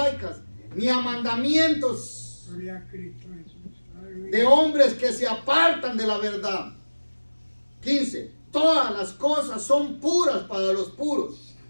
ni a mandamientos de hombres que se apartan de la verdad. 15. Todas las cosas son puras para los puros,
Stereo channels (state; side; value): inverted; both; correlation -1.00